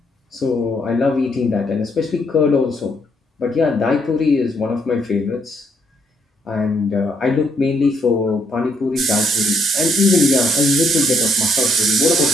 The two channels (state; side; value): normal; both; correlation 0.72